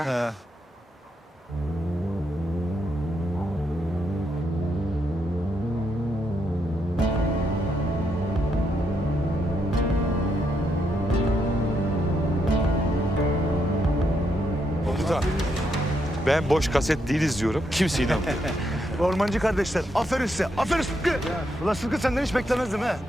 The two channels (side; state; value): both; normal; correlation 0.79